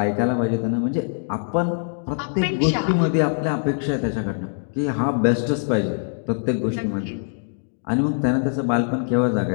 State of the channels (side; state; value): right; silent; digital silence